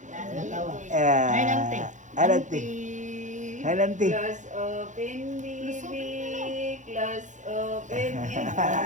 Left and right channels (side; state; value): left; late; 0.36 ms